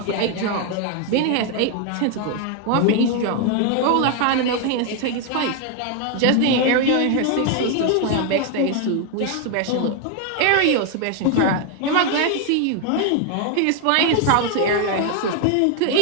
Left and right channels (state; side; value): different; both; correlation 0.01